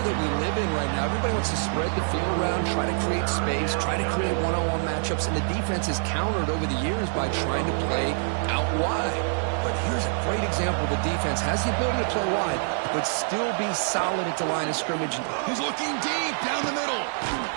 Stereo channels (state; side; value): silent; left; 61 dB below the other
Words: we live in right now, everybody wants to spread the field around, try to create space, try to create one-on-one matchups, and the defense is countered over the years by trying to play out wide. But here's a great example. The defense has the ability to play wide, but still be solid at the line of scrimmage. He's looking deep down the middle.